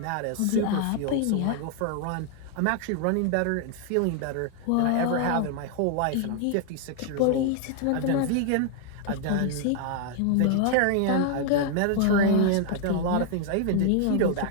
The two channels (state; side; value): different; both; correlation 0.00